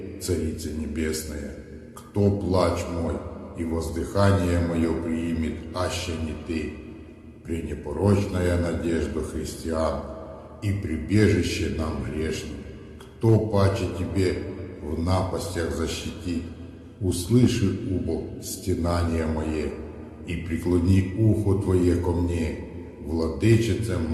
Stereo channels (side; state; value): both; identical; correlation 1.00